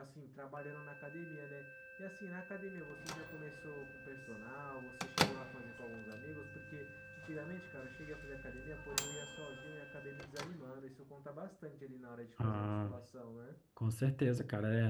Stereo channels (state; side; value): identical; both; correlation 1.00